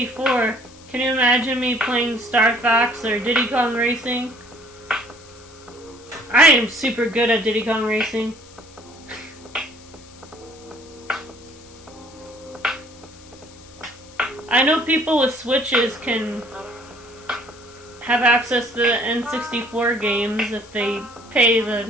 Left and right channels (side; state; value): left; noise; hiss, 23 dB below the sound